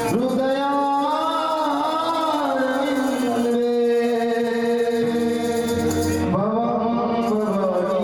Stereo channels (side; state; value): both; identical; correlation 1.00